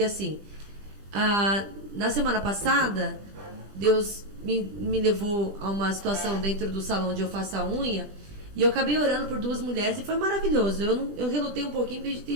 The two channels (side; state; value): left; late; 20 ms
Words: assim, na semana passada, Deus me levou a uma situação dentro do salão onde eu faço a unha, e eu acabei orando por 2 mulheres e foi maravilhoso. Eu relutei um pouquinho, porque